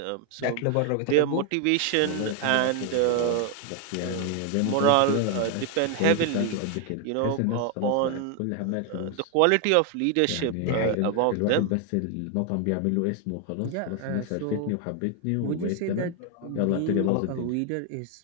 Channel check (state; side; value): different; both; correlation 0.01